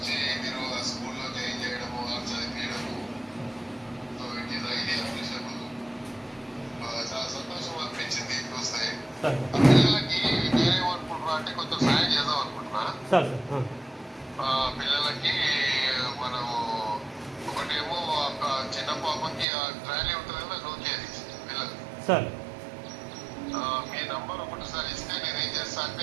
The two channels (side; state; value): left; drops out; at 19.5 s